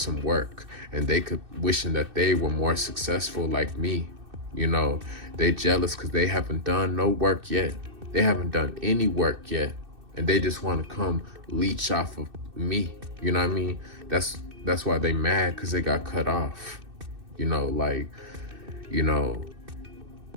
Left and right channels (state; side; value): late; left; 2.6 ms